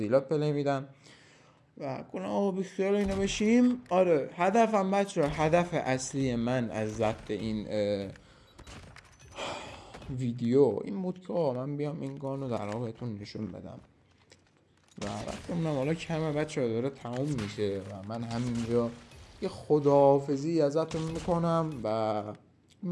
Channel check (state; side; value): identical; both; correlation 1.00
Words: پلی میدن و کنم آقا بخیال اینو بشیم. آره هدفم بچه، هدف اصلی من از ضبط این ویدیو این بود که من بیام این گانو در واقع بهتون نشون بدم و وقتی اونم حالا کمه بچه داره تموم میشه و من همینجا یه خداحافظی ازتون میکنم و